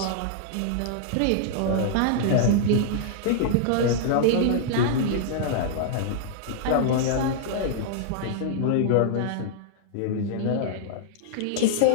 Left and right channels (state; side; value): different; both; correlation -0.01